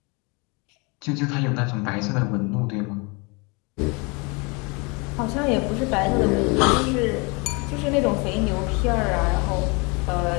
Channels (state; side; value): quieter; right; 29.6 dB